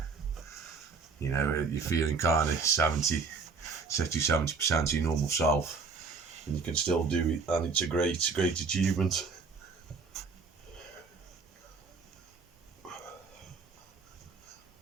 you know, you're feeling kind of 60-70% of your normal self, and you can still do it, and it's a great achievement.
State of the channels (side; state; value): left; quieter; 4.8 dB